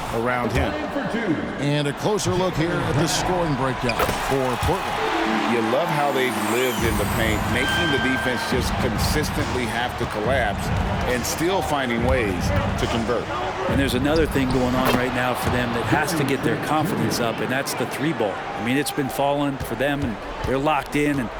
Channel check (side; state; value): both; identical; correlation 1.00